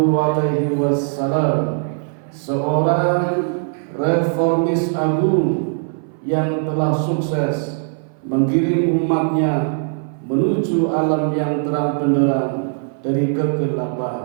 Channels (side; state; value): left; silent; 60 dB below the other